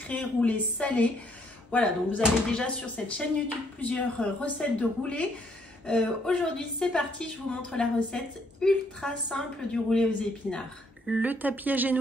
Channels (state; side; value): normal; both; correlation 0.69